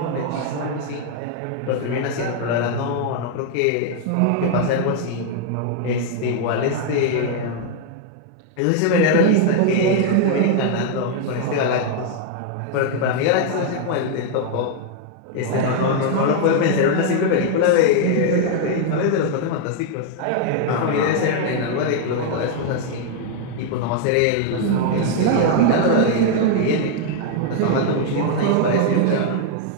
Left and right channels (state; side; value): different; both; correlation 0.00